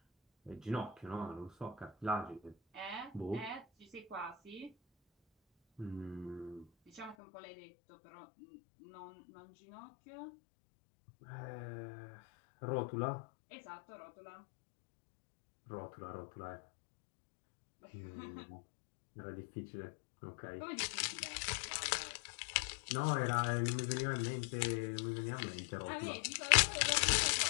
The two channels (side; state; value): right; drops out; at 7.2 s